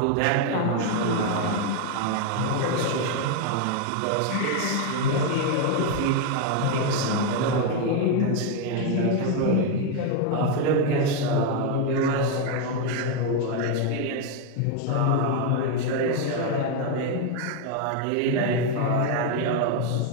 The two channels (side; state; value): both; different; correlation 0.01